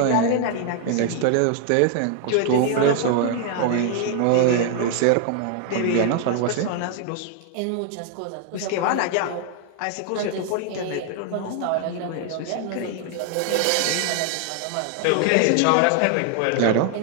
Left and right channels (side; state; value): both; different; correlation 0.00